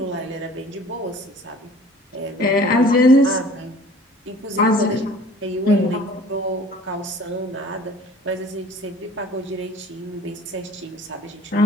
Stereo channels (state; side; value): normal; both; correlation 0.48